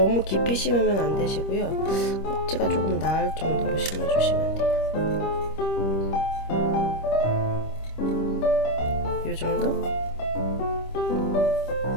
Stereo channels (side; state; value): right; late; 25 ms